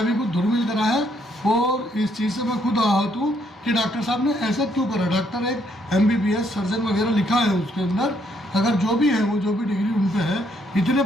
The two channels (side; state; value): both; normal; correlation 0.71